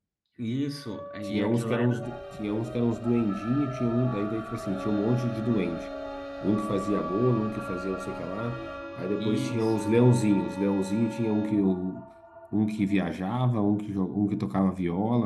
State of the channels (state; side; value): identical; both; correlation 1.00